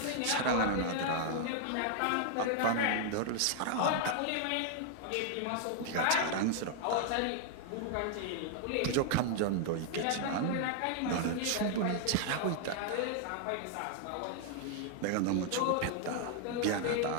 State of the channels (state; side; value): different; both; correlation 0.00